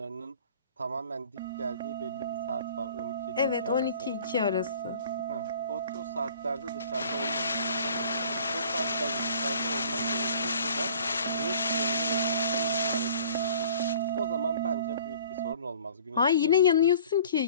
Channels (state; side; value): inverted; both; correlation -0.50